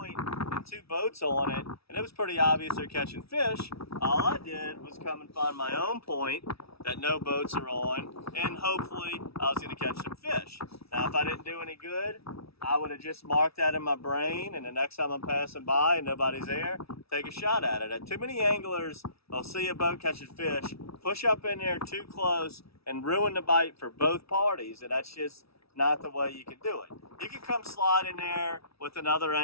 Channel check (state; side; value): late; right; 0.76 ms